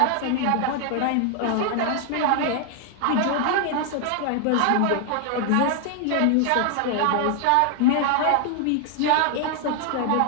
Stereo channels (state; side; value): different; both; correlation 0.00